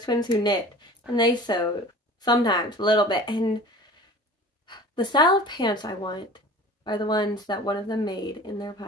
twins who knit, and they sewed sometimes a little bit, and the style of pants I want are the ones that one of them made in their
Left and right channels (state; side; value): normal; both; correlation 0.41